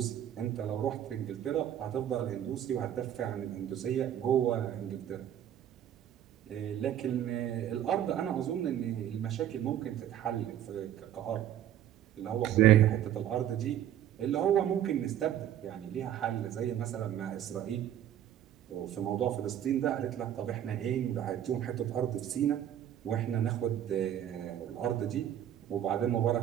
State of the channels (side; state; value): left; quieter; 10.9 dB